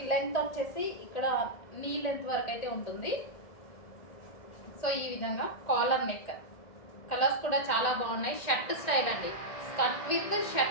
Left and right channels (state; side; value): late; right; 1.9 ms